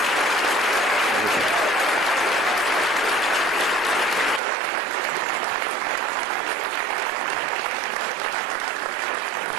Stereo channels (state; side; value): drops out; left; at 4.4 s